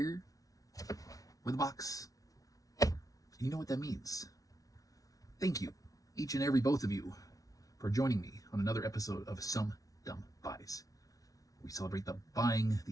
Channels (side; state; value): right; late; 0.18 ms